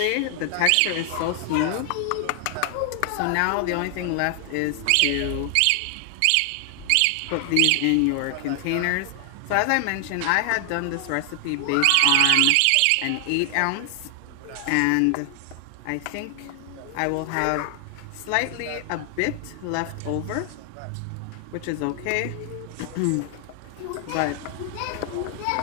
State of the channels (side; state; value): both; different; correlation 0.00